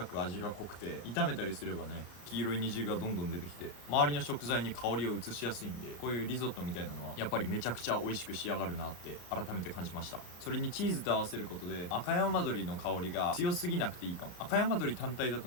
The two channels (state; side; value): late; right; 33 ms